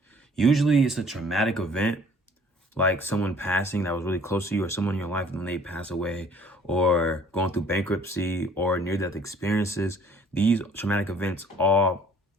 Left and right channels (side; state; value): both; normal; correlation 0.55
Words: Usually it's a traumatic event, like someone passing that was really close to you, or someone in your life when they pass away, or going through bankruptcy or near-death experiences. These traumatic events all